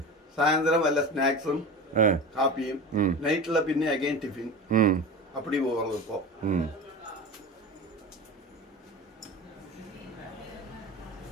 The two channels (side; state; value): both; normal; correlation 0.30